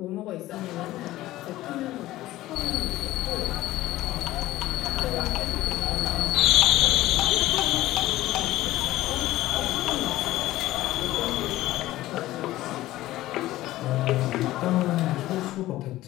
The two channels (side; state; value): right; quieter; 16.1 dB